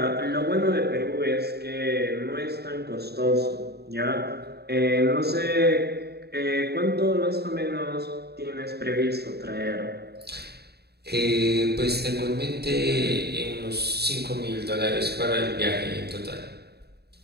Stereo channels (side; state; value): left; late; 0.47 ms